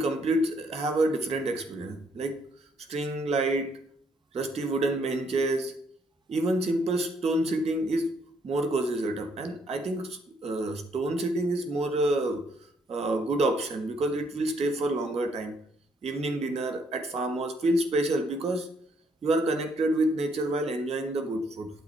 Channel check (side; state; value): both; normal; correlation 0.69